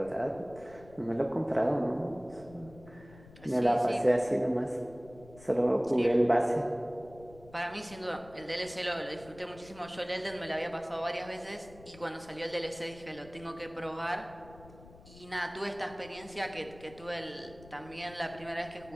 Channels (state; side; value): noise; left; rumble, 20 dB below the sound